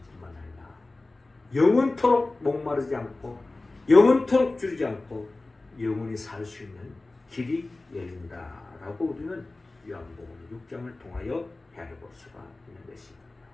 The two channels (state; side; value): quieter; right; 3.1 dB